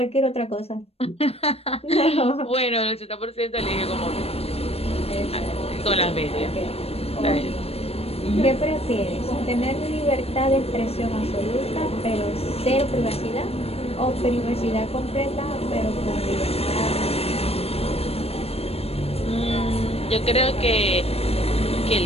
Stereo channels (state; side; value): late; right; 0.29 ms